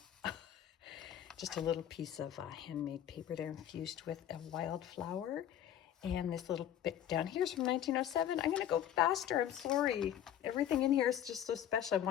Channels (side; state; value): right; quieter; 10.6 dB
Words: Just a little piece of handmade paper there infused with a wildflower. And this little bit down here is from 1907. I'm going to go faster. I'm sorry. Everything in here is just so special. I